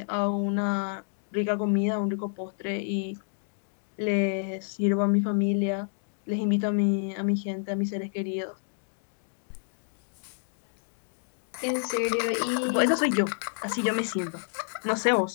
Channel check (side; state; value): right; silent; digital silence